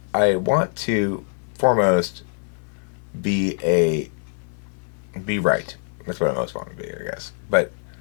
I want to foremost be right. That's what I most want to be, I guess. But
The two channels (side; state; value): right; silent; 63 dB below the other